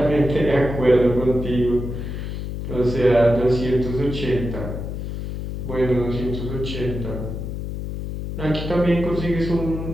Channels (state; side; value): noise; left; hum, 6 dB below the sound